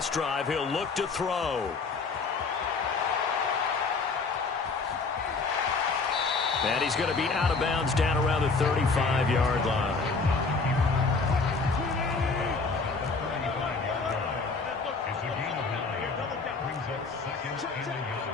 drive. He'll look to throw. And he's going to be out of bounds down around the 35-yard line.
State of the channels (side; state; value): right; quieter; 4.3 dB